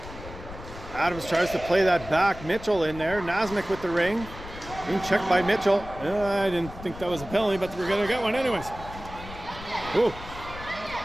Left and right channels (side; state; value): left; noise; rumble, 13 dB below the sound